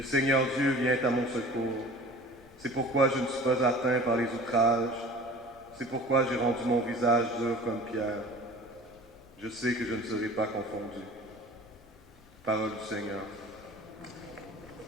Seigneur Dieu vient à mon secours. C'est pourquoi je ne suis pas atteint par les outrages. C'est pourquoi j'ai rendu mon visage dur comme pierre. Je sais que je ne serai pas confondu. Parole du Seigneur.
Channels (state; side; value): normal; both; correlation 0.43